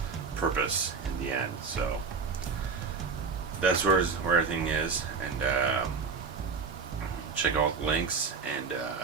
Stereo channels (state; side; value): quieter; left; 5.2 dB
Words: purpose in the end. So that's where everything is, and check out the links, and